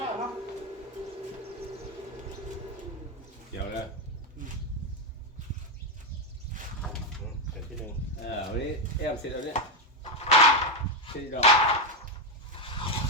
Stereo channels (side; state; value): both; normal; correlation 0.06